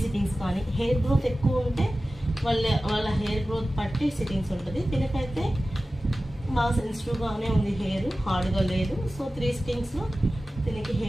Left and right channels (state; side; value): normal; both; correlation 0.95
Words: సిట్టింగ్స్ కానీ, హెయిర్ గ్రోత్ ఎక్కువ ఉంటే వాళ్ళ హెయిర్ గ్రోత్ పట్టి సిట్టింగ్స్ ఉంటుంది. దీనికైతే బాగా సెన్సిటివ్గానే ఉంది, హెయిర్ హార్డ్గా లేదు. సో 3 సిట్టింగ్స్లో దీనికి